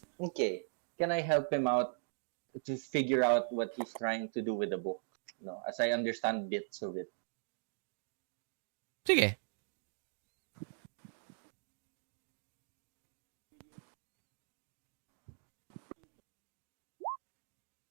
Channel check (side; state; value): left; silent; digital silence